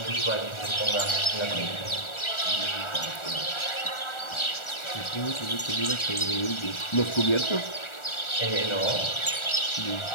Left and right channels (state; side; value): late; right; 1.4 ms